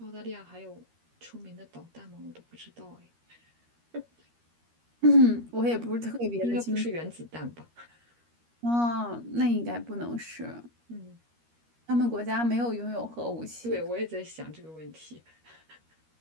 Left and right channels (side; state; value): left; late; 13 ms